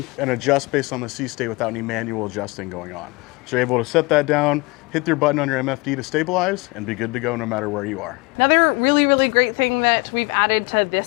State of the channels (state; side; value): quieter; right; 25.6 dB